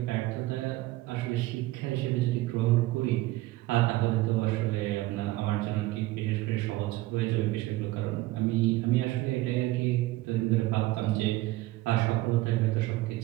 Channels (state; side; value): quieter; left; 18.3 dB